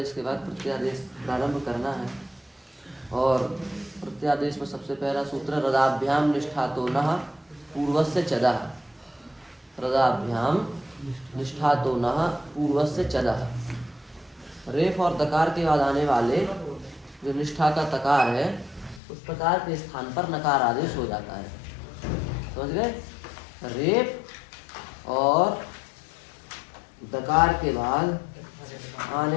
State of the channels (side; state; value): right; drops out; at 19.0 s